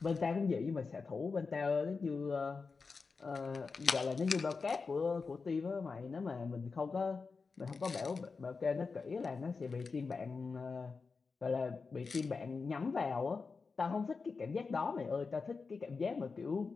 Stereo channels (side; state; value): right; quieter; 4.6 dB